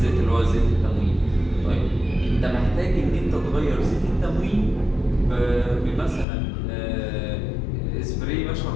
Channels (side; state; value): right; drops out; at 6.2 s